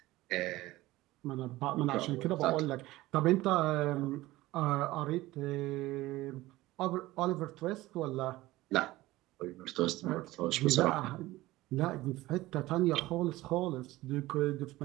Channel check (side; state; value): left; quieter; 18.0 dB